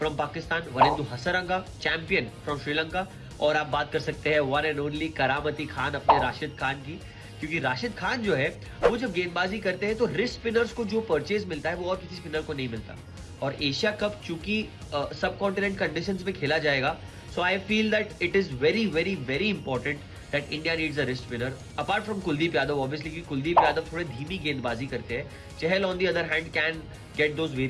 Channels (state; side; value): identical; both; correlation 1.00